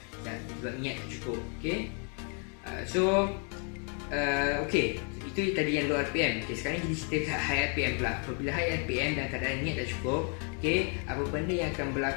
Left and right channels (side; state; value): right; quieter; 39.6 dB